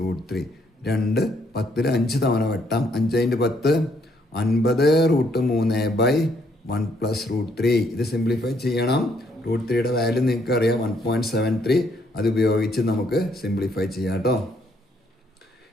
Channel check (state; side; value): normal; both; correlation 0.70